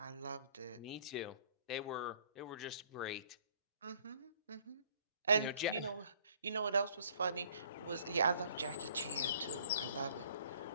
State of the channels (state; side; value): inverted; both; correlation -0.59